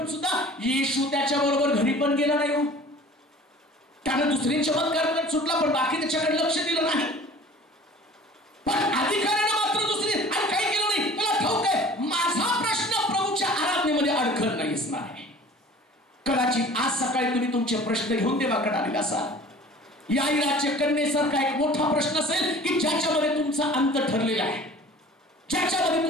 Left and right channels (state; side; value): normal; both; correlation 0.45